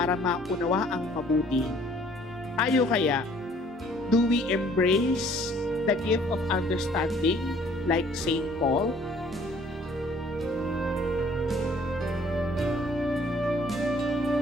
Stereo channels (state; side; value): normal; both; correlation 0.58